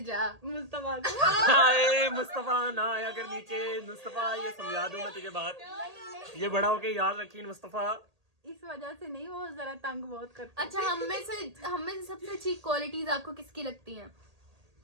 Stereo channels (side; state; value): left; late; 1.8 ms